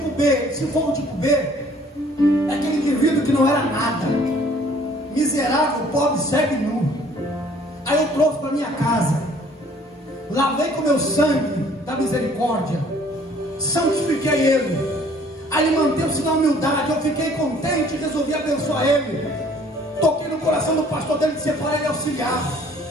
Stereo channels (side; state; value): both; normal; correlation 0.57